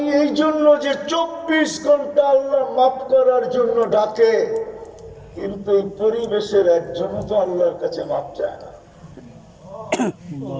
এই জন্য যে 24 ঘন্টা আল্লাহ মাফ করার জন্য ডাকে, কিন্তু এই পরিবেশের একজনও তো আল্লাহর কাছে মাফ চায় না।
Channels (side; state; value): both; identical; correlation 1.00